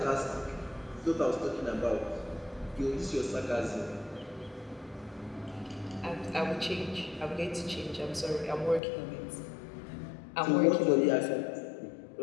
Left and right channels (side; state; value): right; drops out; at 8.8 s